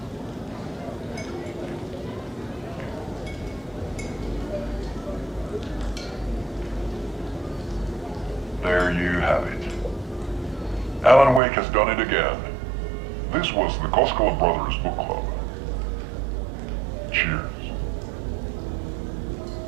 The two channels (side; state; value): left; drops out; at 11.4 s